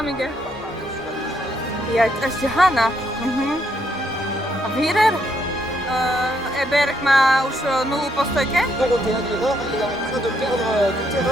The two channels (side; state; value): both; normal; correlation 0.74